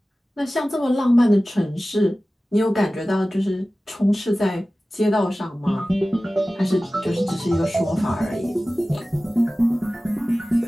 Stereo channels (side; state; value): both; normal; correlation 0.96